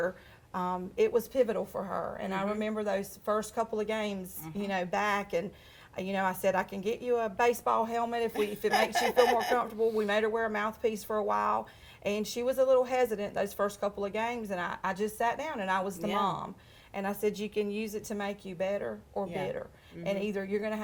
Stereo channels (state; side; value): identical; both; correlation 1.00